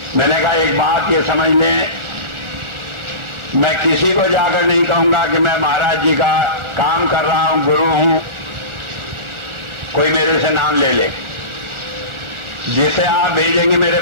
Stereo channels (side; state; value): left; late; 1.4 ms